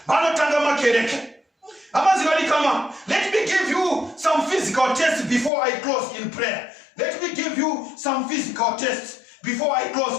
vanotanga makereke. Let me give you some physical tests before I close in prayer. Let me give you some physical tests before I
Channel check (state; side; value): drops out; right; at 5.5 s